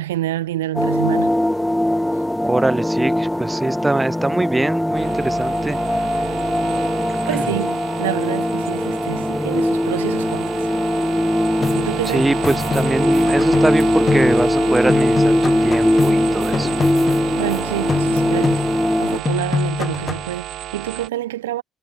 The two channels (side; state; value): both; normal; correlation 0.86